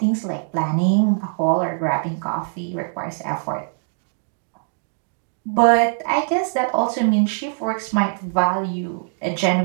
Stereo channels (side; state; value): left; silent; digital silence